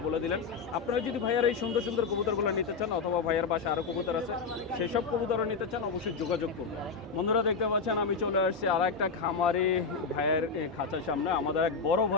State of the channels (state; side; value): quieter; right; 4.9 dB